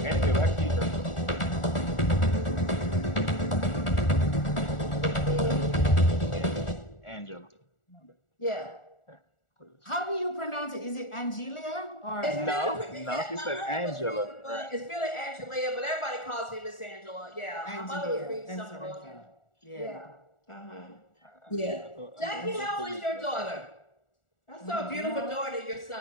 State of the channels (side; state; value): right; late; 1.4 ms